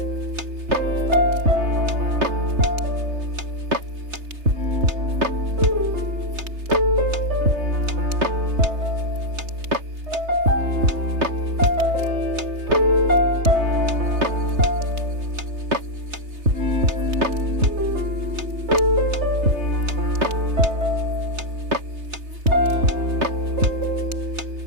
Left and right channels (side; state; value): left; late; 3.3 ms